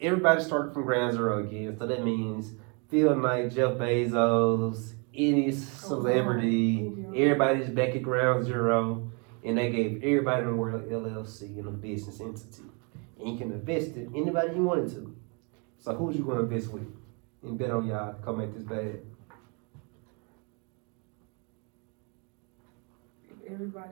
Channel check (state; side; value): quieter; left; 34.5 dB